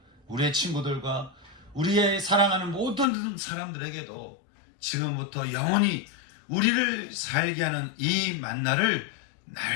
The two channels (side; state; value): right; drops out; at 3.1 s